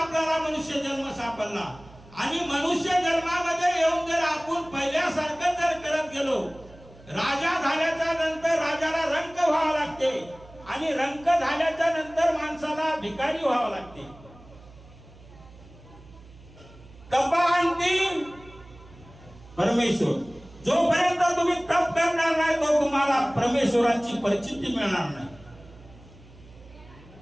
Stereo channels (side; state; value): right; noise; hum, 22 dB below the sound